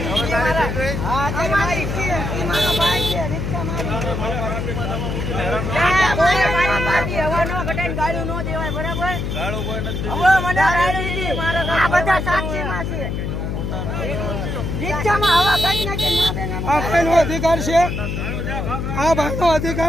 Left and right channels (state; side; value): noise; left; hum, 3 dB below the sound